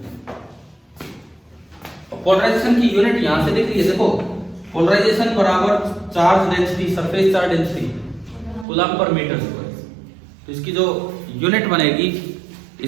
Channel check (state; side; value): drops out; left; at 8.7 s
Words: पोलराइजेशन की यूनिट यहां से दिख रही है, देखो पोलराइजेशन बराबर charge density, surface charge density coulomb पर मीटर स्क्वायर। तो इसकी जो यूनिट बनेगी,